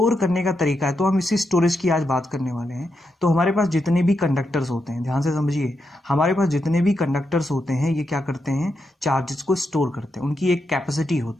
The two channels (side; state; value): both; normal; correlation 0.84